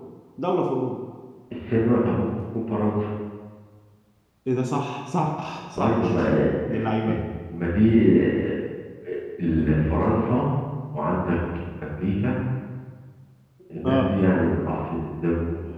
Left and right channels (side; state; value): both; identical; correlation 1.00